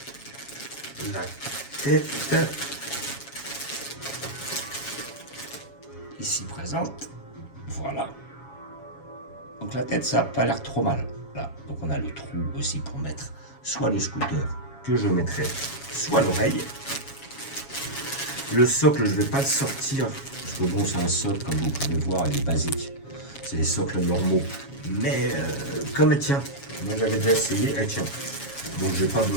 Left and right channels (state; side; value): late; right; 7.2 ms